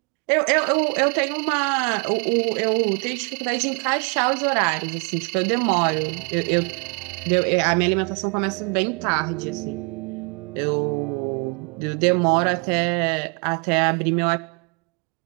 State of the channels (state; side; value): quieter; left; 34.7 dB